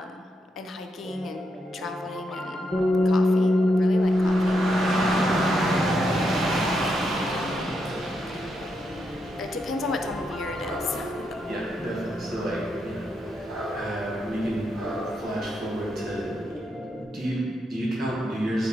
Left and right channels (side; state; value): both; normal; correlation 0.82